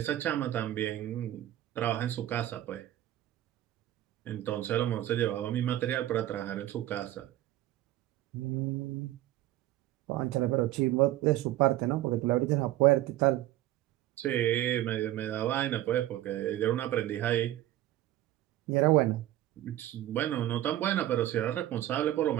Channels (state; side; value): quieter; left; 14.2 dB